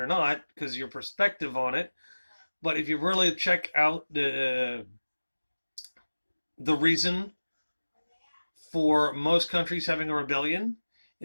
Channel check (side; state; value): both; inverted; correlation -1.00